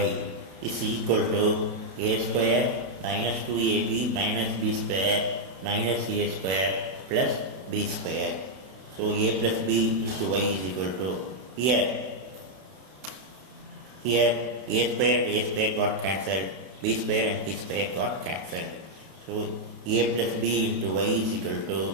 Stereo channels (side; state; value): left; late; 32 ms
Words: is equal to a square minus 2ab minus b square minus a square plus b square. So a plus b into y is equal to, here a square and a square got cancelled, b square and b square got cancelled. So a plus b into y is equal to